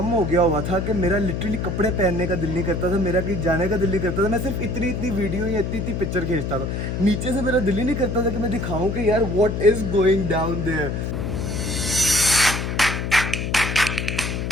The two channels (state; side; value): noise; left; hum, 3 dB below the sound